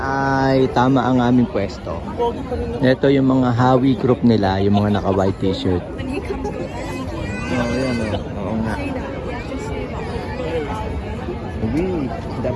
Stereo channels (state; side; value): identical; both; correlation 1.00